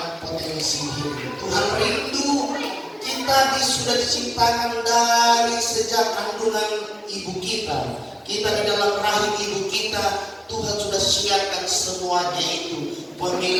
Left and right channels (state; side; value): identical; both; correlation 1.00